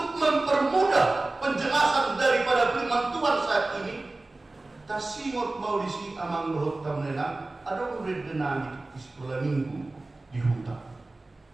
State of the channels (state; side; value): quieter; left; 3.0 dB